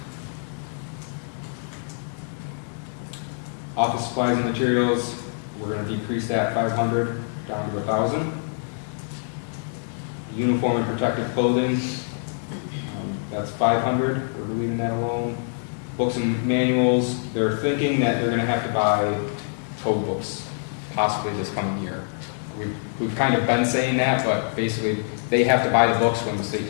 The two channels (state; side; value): silent; right; 62 dB below the other